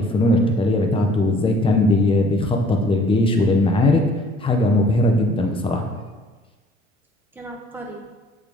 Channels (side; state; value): both; normal; correlation 0.56